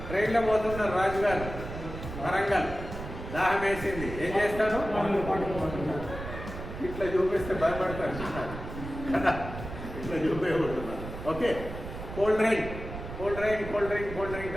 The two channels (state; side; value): noise; right; rumble, 9 dB below the sound